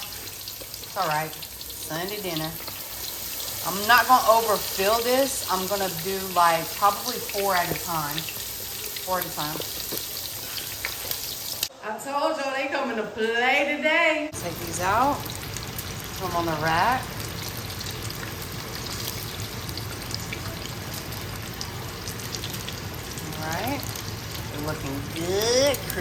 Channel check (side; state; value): both; identical; correlation 1.00